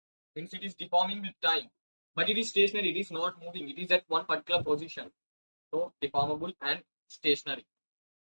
Means it is deforming with time, but it is stationary. It is not moving. It is at one particular position. So deformable and stationary.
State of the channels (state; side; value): inverted; both; correlation -1.00